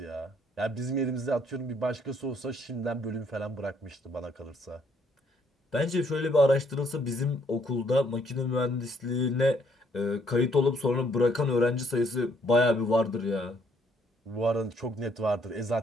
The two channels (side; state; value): both; normal; correlation 0.68